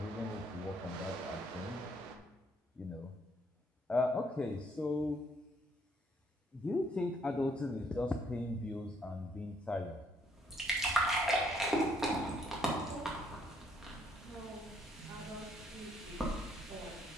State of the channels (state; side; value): normal; both; correlation 0.68